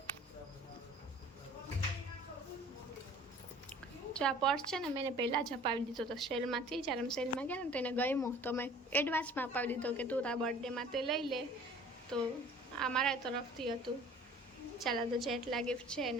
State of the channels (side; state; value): both; normal; correlation 0.48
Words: જો આ પર્સ છે ને મેં એને પહેલાં જ અપાવી દીધો હતો સેલમાંથી. જ્યારે અમે સેલમાં ગયા ને તો એને ગમ્યો તો મેં એડવાન્સમાં અપાવી દીધો કે તું તારા બર્થડેમાં તે લઈ લે. તો આ મારા તરફથી હતું. ચાલો તો જેટલા ગિફ્ટ છે